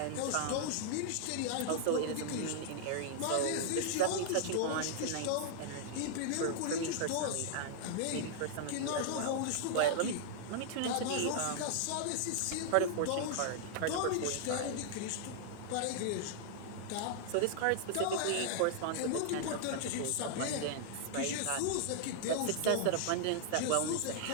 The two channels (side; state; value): both; different; correlation -0.01